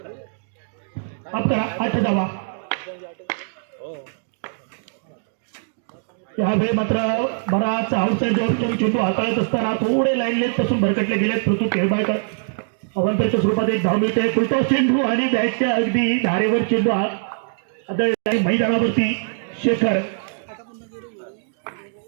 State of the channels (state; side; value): silent; left; digital silence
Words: आपला 8 धावा. यावेळी मात्र बराच आउटसाइड चेंडू हाताळत असताना थोडे लाईन लेट पासून भरकटले गेले. पृथ्वी खेळबाळकर अवंतरच्या स्वरूपात 1 धाव मिळते. फुलटॉस चेंडू आणि बॅटच्या अगदी धारेवर चेंडू आदळला मैदानावरती. शेखर